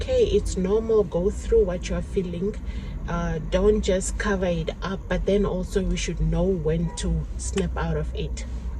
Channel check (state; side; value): identical; both; correlation 1.00